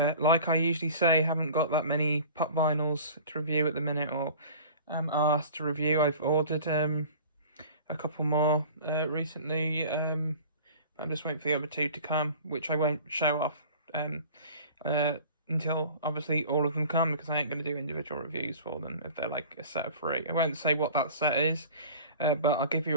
I usually say, haven't got that many pop vinyls to review at the minute, or asked to review. I've ordered a couple more recently. I'm just waiting for the other two to come, which I won't show off until obviously all of them come, because I ain't going to do individual reviews for them if they're like a set of three. I won't say what that set is, but I'll give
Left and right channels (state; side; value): inverted; both; correlation -0.42